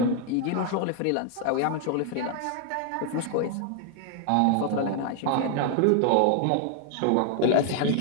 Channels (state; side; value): different; both; correlation 0.00